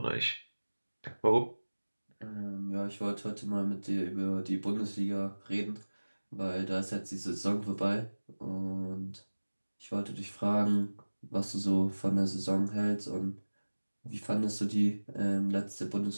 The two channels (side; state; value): both; inverted; correlation -1.00